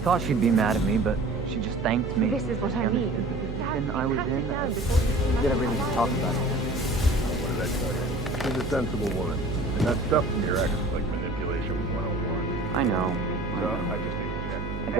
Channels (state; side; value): noise; right; hum, 6 dB below the sound